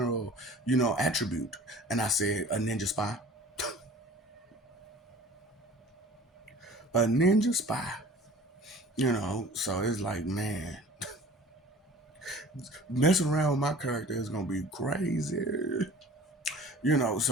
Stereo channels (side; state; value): both; normal; correlation 0.45